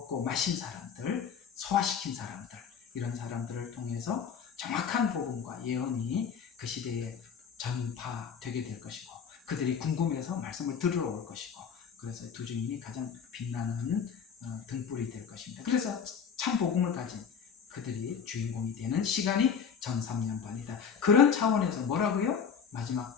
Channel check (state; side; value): quieter; right; 7.0 dB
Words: 마신 사람들, 소화시킨 사람들, 이런 사람들을 통해서 정확한 복음과 예언이 그 시대에 전파되게 될 것이고, 그들이 궁금해서 말씀을 들으러 올 것이고, 그래서 두 증인이 가장 빛나는 등불이 될 것입니다. 그래서 참 복음을 가진 그들이 주인공이 되는 시간이 전 3년반이다. 그런 차원에서 뭐라고요? 마지막